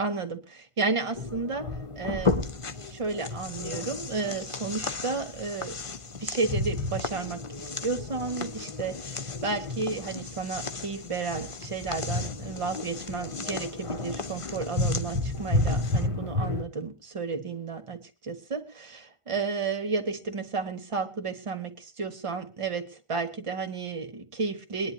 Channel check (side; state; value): left; late; 1.5 ms